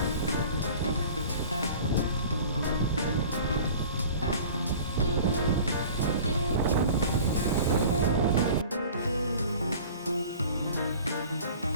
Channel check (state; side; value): inverted; both; correlation -0.43